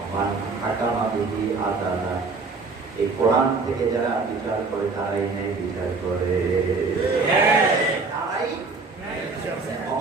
মান হাকামা বিহি আদালা, এই কোরআন থেকে যারা বিচার করে তারাই ন্যায় বিচার করে। তারাই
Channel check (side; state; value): left; quieter; 4.1 dB